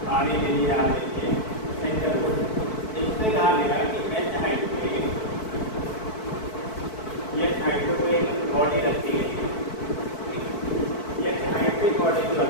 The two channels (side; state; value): right; late; 4.6 ms